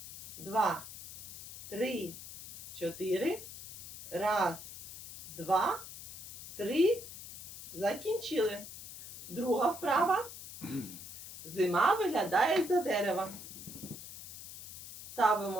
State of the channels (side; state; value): left; noise; hiss, 11 dB below the sound